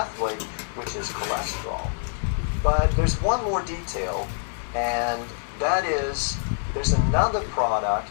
which is cholesterol. But there's one more detail, and that is there's another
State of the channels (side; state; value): right; silent; digital silence